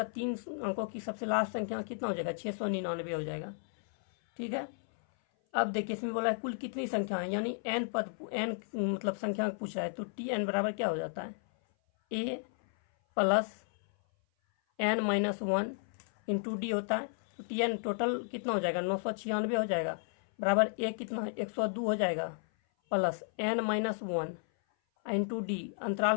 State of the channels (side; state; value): right; silent; 56 dB below the other